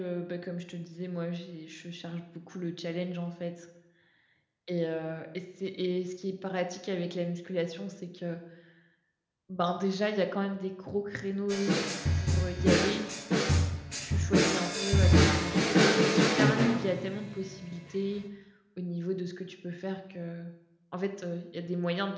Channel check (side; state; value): both; identical; correlation 1.00